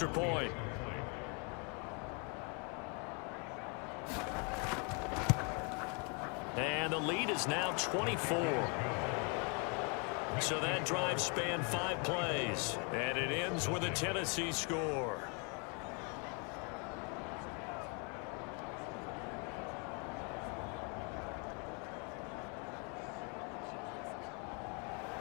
point. And the lead is now 24. So that drive spanned 5 plays, and it ends with a Tennessee score.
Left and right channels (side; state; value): right; quieter; 35.6 dB